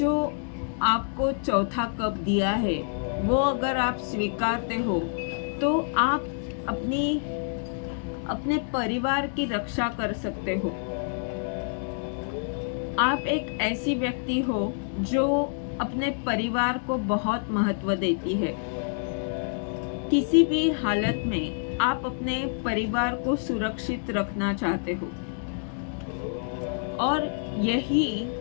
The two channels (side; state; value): right; silent; digital silence